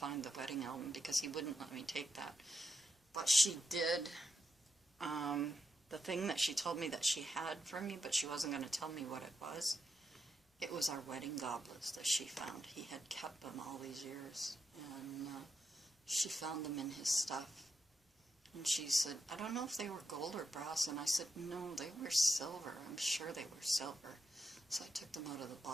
the wedding album because he wouldn't let me take that. But she did the thing that she told me that she had for me, but she wasn't going to tell me what it was. It was our wedding goblets that she found. He had kept them all these years, and she found them in his stuff. And she said, "I don't know if they were gold or brass." And I said, "No, they were silver. I'm sure they were silver." So I took them out of the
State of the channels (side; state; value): both; normal; correlation 0.84